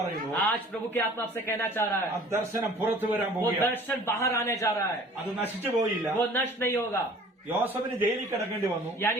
പറയുന്നു, आज प्रभु के आत्मा आपसे कहना चाह रहा ആ है ദർശനം പുറത്തു വരാൻ वो പോകുകയാണ്. दर्शन बाहर आने जा रहा है, അത് നശിച്ചു പോയില്ല. वो नष्ट नहीं होगा। യോസഫിന് ജയിലിൽ കിടക്കേണ്ടി വന്നു.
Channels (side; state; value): both; normal; correlation 0.49